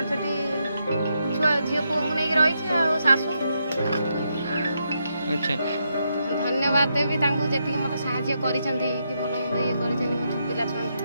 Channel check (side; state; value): both; inverted; correlation -0.81